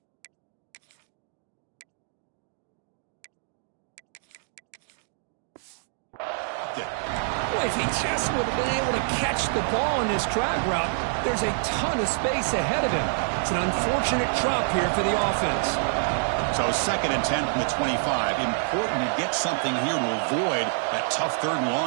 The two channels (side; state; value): left; silent; digital silence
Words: If he just would have been able to catch the ball in this drag route, there's a ton of space ahead of him. It's an unfortunate drop here for the offense. So 2nd and 10 from the 25. Important to get something here to avoid that tough 3rd and